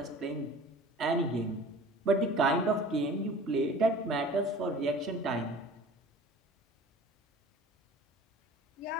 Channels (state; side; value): normal; both; correlation 0.43